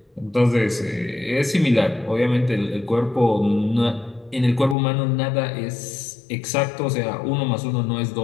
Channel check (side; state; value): right; drops out; at 4.8 s